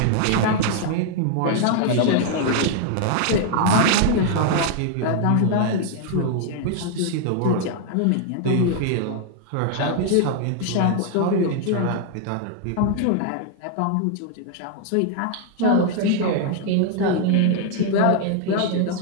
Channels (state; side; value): different; both; correlation 0.00